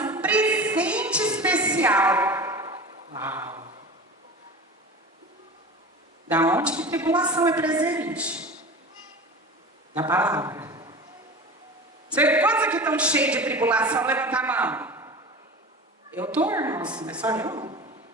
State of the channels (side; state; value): both; normal; correlation 0.33